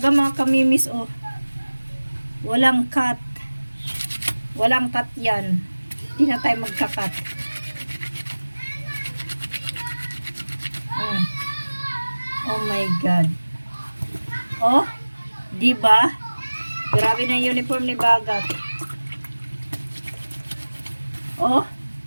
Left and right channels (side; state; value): both; inverted; correlation -1.00